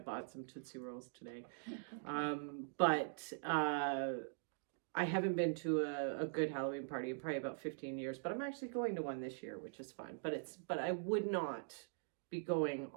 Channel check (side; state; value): left; silent; digital silence